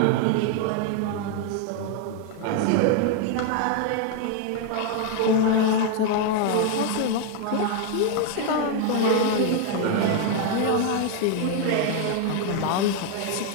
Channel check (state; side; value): different; both; correlation 0.00